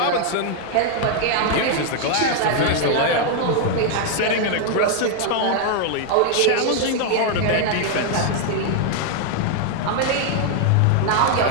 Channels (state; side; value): different; both; correlation 0.00